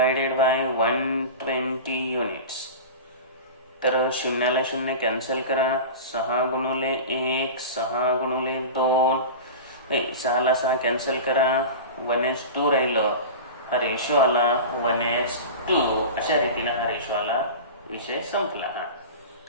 बाय 120 युनिट्स. तर शून्याला शून्य कॅन्सल करा. 6 गुणुले 1 6 गुणुले 2 6 ला 6 कॅन्सल करा. 1:2 राहिलं. हा रेशो आला 1:2. अशा रीतीने हा रेशो आला. विषय संपला.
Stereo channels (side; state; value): both; inverted; correlation -0.30